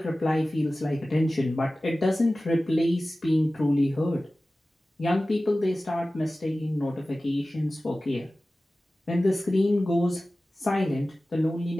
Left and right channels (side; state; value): both; normal; correlation 0.96